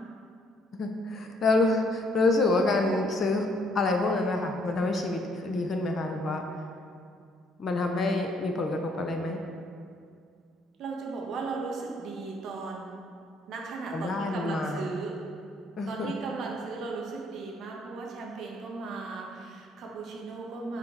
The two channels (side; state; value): both; normal; correlation 0.67